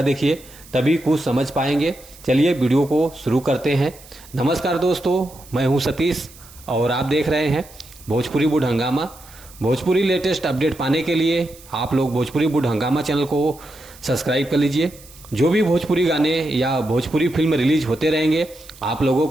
देखिए, तभी कुछ समझ पाएंगे। चलिए वीडियो को शुरू करते हैं। नमस्कार दोस्तों, मैं हूं सतीश और आप देख रहे हैं भोजपुरी बुड हंगामा। भोजपुरी लेटेस्ट अपडेट पाने के लिए आप लोग भोजपुरी बुड हंगामा चैनल को सब्सक्राइब कर लीजिए। जो भी भोजपुरी गाने या भोजपुरी फिल्म रिलीज होते रहेंगे, आप लोगों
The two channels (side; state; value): right; noise; hiss, 22 dB below the sound